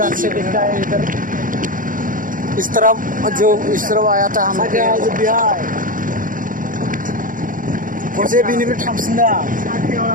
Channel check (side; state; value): left; late; 0.39 ms